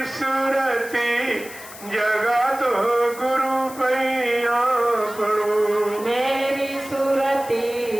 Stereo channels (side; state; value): left; noise; hiss, 16 dB below the sound